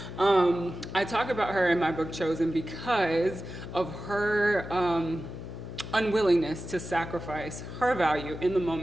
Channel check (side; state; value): left; noise; hum, 9 dB below the sound